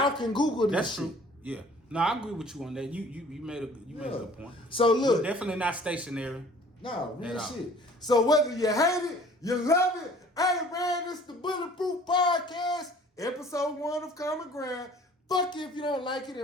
can Google this. That's shit. true. Yeah. No, I agree with you on that. You made a good point. So look, we're definitely not stationary. No, real shit. So whether you hate it, you love it. Hey man, it's the Bulletproof Podcast, episode 1 of Common Ground. Fuck you if you don't like it,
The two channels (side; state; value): both; normal; correlation 0.51